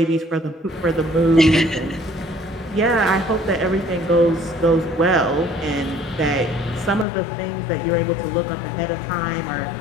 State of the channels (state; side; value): drops out; right; at 7.1 s